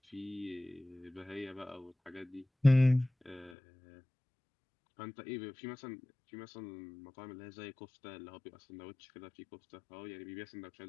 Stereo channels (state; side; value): drops out; right; at 3.5 s